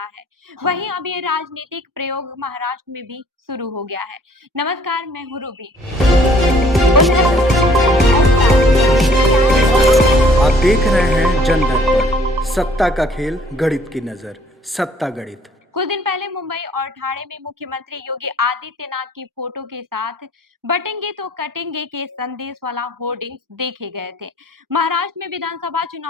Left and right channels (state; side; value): normal; both; correlation 0.58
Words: है। वहीं अब ये राजनीतिक प्रयोग महाराष्ट्र में भी शुरू हो गया है। नमस्कार, मैं हूँ रूबी। आप देख रहे हैं जन दर्पण, सत्ता का खेल, गणित की नजर, सत्ता गणित। कुछ दिन पहले मुंबई और ठाणे में मुख्यमंत्री योगी आदित्यनाथ की फोटो के साथ बटेंगे तो कटेंगे के संदेश वाला होर्डिंग्स देखे गए थे। महाराष्ट्र में विधानसभा